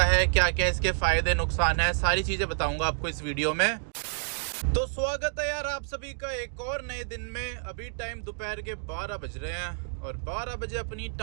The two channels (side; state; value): left; silent; digital silence